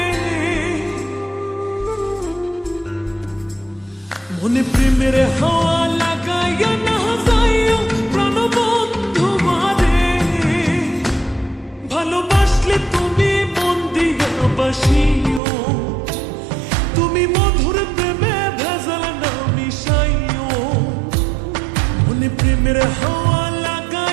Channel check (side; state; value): left; drops out; at 15.4 s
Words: মনে প্রেমের হাওয়া লাগাইয়া না যাইও প্রাণবন্ধু বারে। ভালোবাসলে তুমি মন দিয়া বাসিও, তুমি মধুর প্রেমে ভেজাল না মিশাইও। মনে প্রেমের হাওয়া